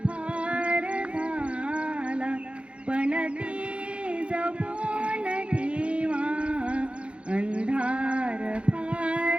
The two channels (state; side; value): late; left; 0.060 ms